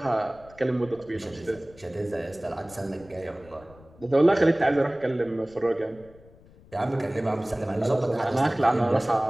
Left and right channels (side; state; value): left; noise; rumble, 24 dB below the sound